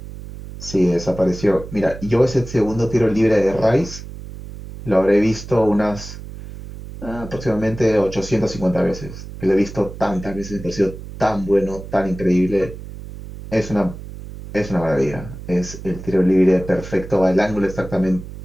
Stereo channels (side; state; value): right; noise; hum, 12 dB below the sound